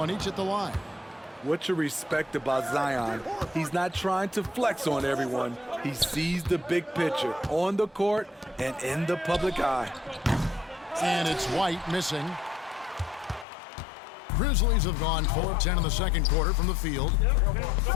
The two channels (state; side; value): drops out; right; at 13.5 s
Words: each at the line. What you respect about Zion, he's not trying to flex on everyone. He sees the big picture on the court and in the public eye. And it's White missing. Grizzlies have gone 4 of 10 in the second quarter from the field,